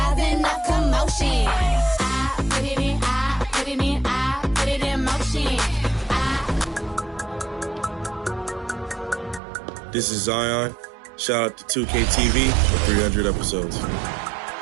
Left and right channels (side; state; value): left; drops out; at 9.4 s